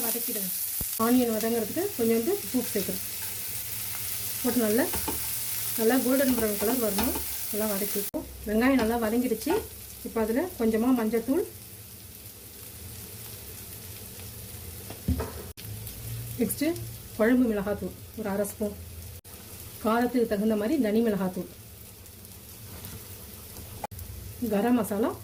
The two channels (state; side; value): identical; both; correlation 1.00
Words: வதக்கிடுங்க. ஆனியன் வதங்கிறதுக்கு கொஞ்சோண்டு உப்பு சேர்க்குறேன். போட்டு நல்லா கோல்டன் ப்ரௌன் கலர் வரணும். நல்லா வதக்கிப்போம். வெங்காயம் நல்லா வதங்கிடுச்சு. இப்போ அதில் கொஞ்சமாக மஞ்சத்தூள், நெக்ஸ்ட்டு குழம்பு மிளகாத்தூள் ஒரு 1/2 ஸ்பூன், காரத்துக்கு தகுந்த மாதிரி தனி மிளகாத்தூள், கரம் மசாலா